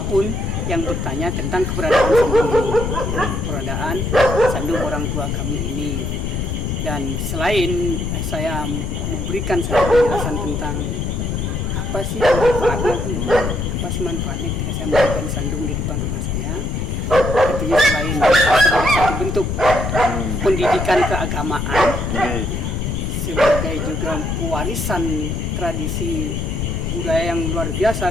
yang bertanya tentang keberadaan sandung ini, keberadaan sandung orang tua kami ini. Dan selain saya memberikan satu penjelasan tentang apa sih manfaatnya, apa sih manfaatnya ketika saya memberikan sandung di depan rumah saya, tentunya selain sebagai satu bentuk pendidikan keagamaan, sebagai juga warisan tradisi budaya yang luar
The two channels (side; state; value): left; noise; rumble, 2 dB below the sound